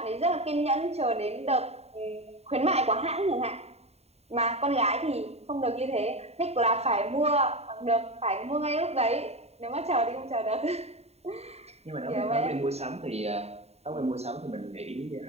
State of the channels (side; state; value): left; late; 0.30 ms